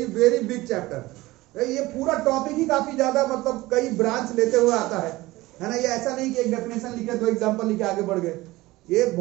very big chapter. ये पूरा टॉपिक ही काफी ज्यादा, मतलब कई ब्रांच लेते हुए आता है ना। ये ऐसा नहीं कि एक डेफिनेशन लिखे दो एग्जांपल लिखे आगे बढ़ गए, ये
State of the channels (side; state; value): left; quieter; 19.2 dB